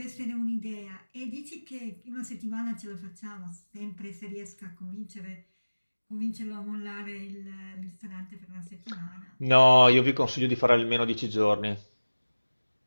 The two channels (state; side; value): inverted; both; correlation -1.00